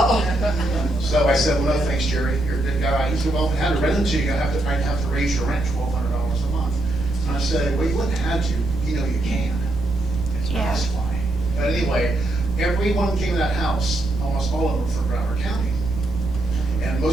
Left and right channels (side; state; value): right; noise; rumble, 8 dB below the sound